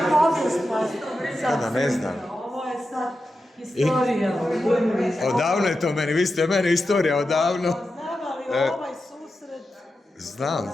povijest. Da, ne znam. Ovo je sad historija. Odavno je to meni, vi ste meni istorija odavno. Znam, ali ovaj susret... Znam.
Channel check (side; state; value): both; normal; correlation 0.90